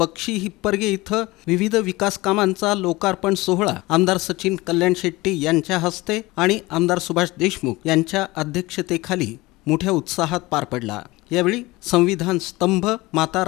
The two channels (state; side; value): quieter; right; 20.8 dB